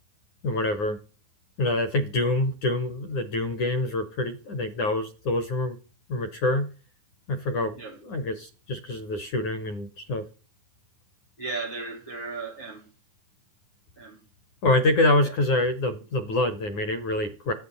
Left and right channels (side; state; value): right; late; 9.7 ms